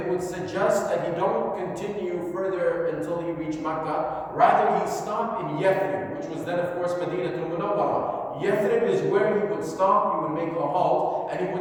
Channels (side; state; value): both; identical; correlation 1.00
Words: would suggest that he don't continue further until he reached Makkah. Rather, he stopped in Yathrib, which was then, of course, Madinah al-Munawwarah. Yathrib is where he would stop, he would make a halt, and he